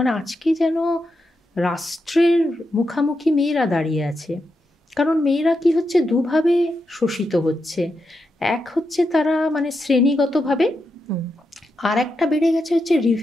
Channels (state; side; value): normal; both; correlation 0.85